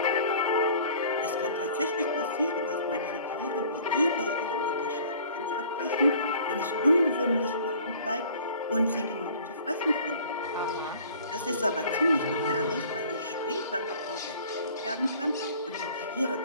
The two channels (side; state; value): both; inverted; correlation -0.50